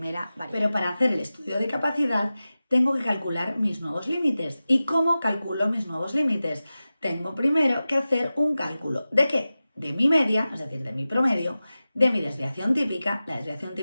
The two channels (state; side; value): inverted; both; correlation -0.95